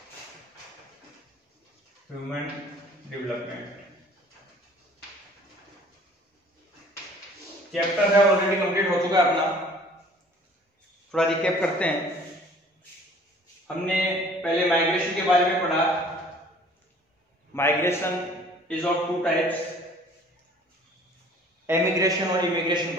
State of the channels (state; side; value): normal; both; correlation 0.52